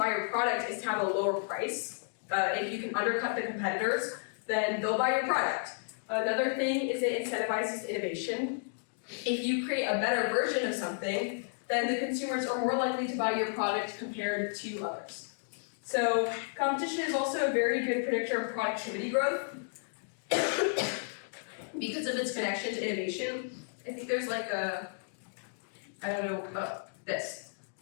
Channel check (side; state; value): right; silent; digital silence